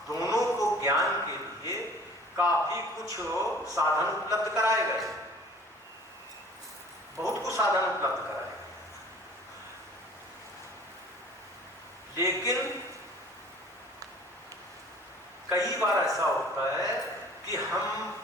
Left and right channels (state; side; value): normal; both; correlation 0.49